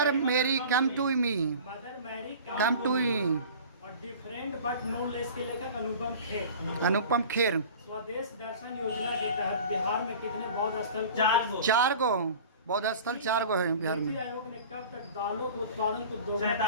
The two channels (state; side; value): inverted; both; correlation -0.40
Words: Mary come to me, mother Mary come to me. और डिफरेंट बट नो लेस के लेखक अनुपम खेर। अनुपम खेर। स्वदेश दर्शन योजना के तहत बिहार में कितने बौद्ध स्थल को 4 गो बौद्ध स्थल 4 गो है बिहार में। नीति आयोग ने कब तक दालों के उत्पादन को